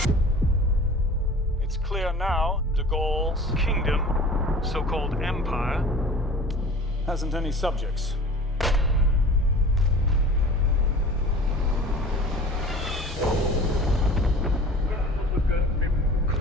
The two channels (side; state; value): both; normal; correlation 0.42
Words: It's clear now de Gaulle's kingdom, so-called empire, hasn't any subjects.